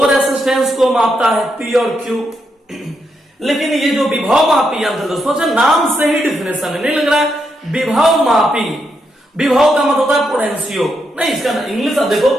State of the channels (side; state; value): both; normal; correlation 0.81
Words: रेसिस्टेंस को मापता है, पी और क्यू। लेकिन ये जो विभव मापी यंत्र दोस्तों, नाम से ही डिफिनेशन है, नहीं लग रहा है विभव मापी। विभव का मतलब होता है पोटेंशियो, नहीं, इसका इंग्लिश आप देखो